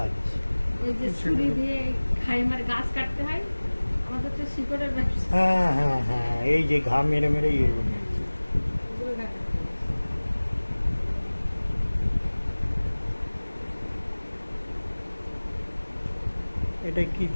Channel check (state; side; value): inverted; both; correlation -1.00